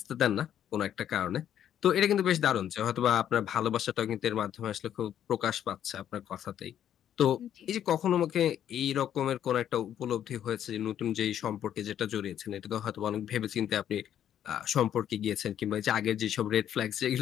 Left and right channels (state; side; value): quieter; right; 10.3 dB